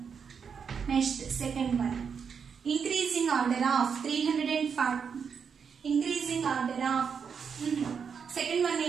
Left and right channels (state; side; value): quieter; left; 6.5 dB